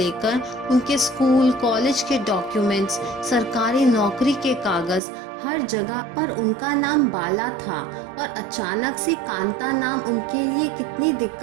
उनके स्कूल कॉलेज के डॉक्यूमेंट्स, सरकारी नौकरी के कागज, हर जगह पर उनका नाम बाला था, और अचानक से कांता नाम उनके लिए कितनी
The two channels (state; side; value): drops out; left; at 5.0 s